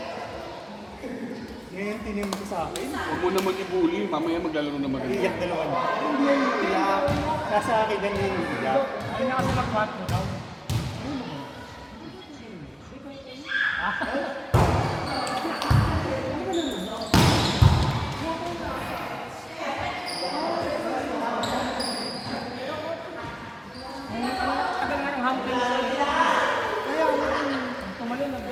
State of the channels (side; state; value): both; identical; correlation 1.00